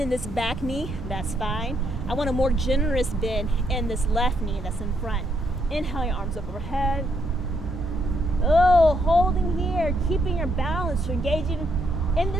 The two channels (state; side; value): normal; both; correlation 0.75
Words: this back knee, that's fine. I want a more generous bend in this left knee that's in front. Inhale, your arms up overhead. Oh, holding here, keeping your balance. You're engaging in